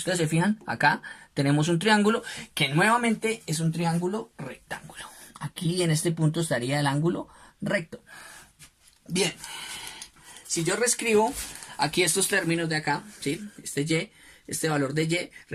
se fijan, acá tenemos un triángulo que nuevamente es un triángulo rectángulo. Aquí en este punto estaría el ángulo recto. Bien, si yo reescribo aquí estos términos de acá, ¿sí? Este y, este valor de y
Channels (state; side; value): identical; both; correlation 1.00